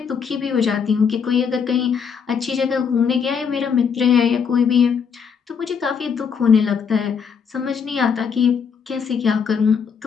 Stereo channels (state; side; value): quieter; right; 6.5 dB